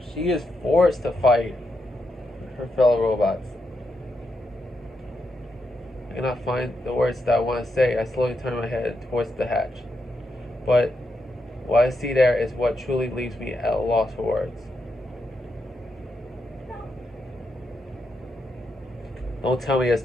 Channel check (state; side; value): normal; both; correlation 0.83